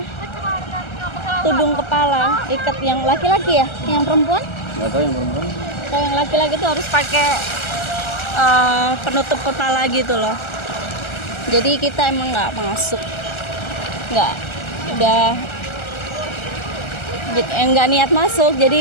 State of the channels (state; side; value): late; right; 1.3 ms